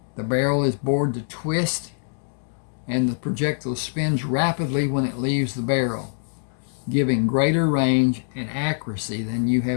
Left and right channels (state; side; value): silent; right; digital silence